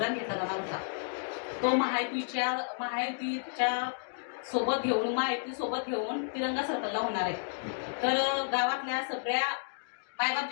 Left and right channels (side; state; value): right; silent; digital silence